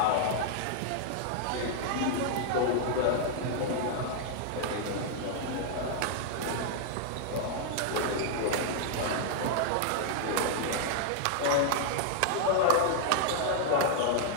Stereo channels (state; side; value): different; both; correlation -0.01